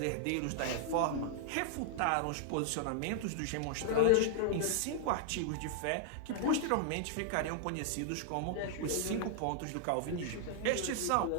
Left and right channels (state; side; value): different; both; correlation -0.01